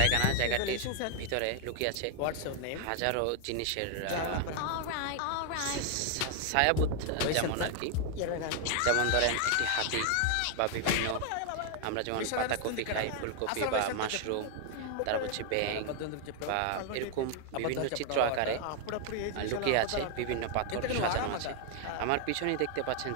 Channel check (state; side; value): different; both; correlation 0.00